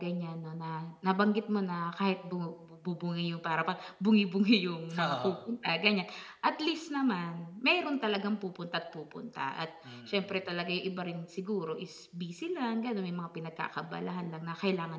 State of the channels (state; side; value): identical; both; correlation 1.00